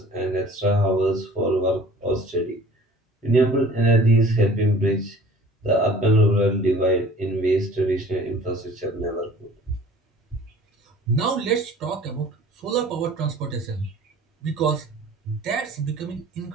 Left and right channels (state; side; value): normal; both; correlation 0.48